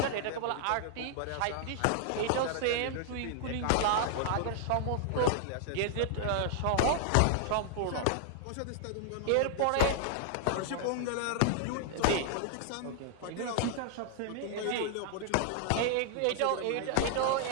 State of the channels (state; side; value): different; both; correlation -0.01